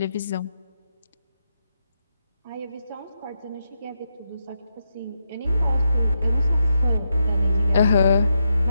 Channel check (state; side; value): inverted; both; correlation -0.83